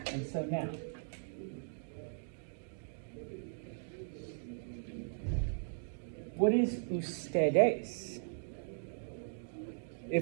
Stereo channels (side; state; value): left; silent; digital silence